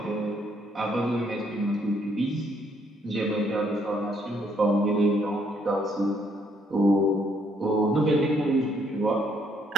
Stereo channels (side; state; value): both; normal; correlation 0.69